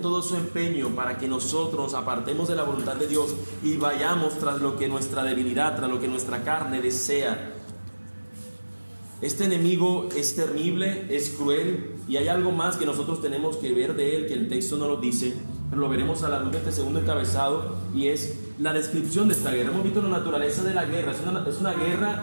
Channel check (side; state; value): both; inverted; correlation -1.00